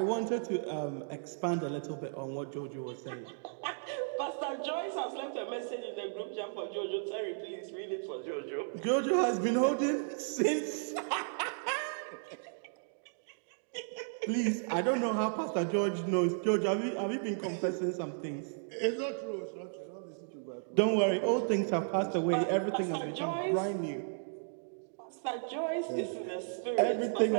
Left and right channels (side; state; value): left; silent; digital silence